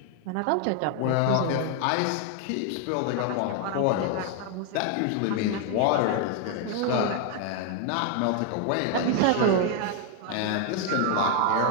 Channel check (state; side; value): different; both; correlation 0.00